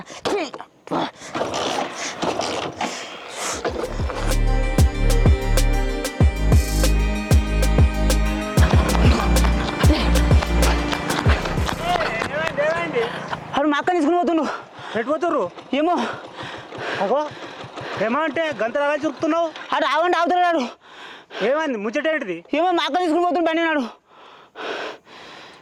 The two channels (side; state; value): both; identical; correlation 1.00